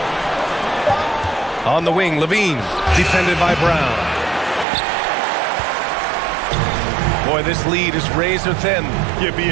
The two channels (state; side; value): drops out; left; at 4.7 s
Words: On the wing, Levine, defended by Brown. Boy, this lead is razor thin. Yeah,